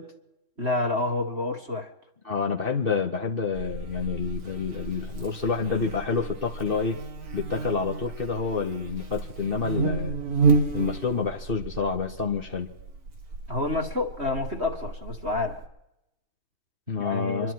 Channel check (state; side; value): late; left; 4.0 ms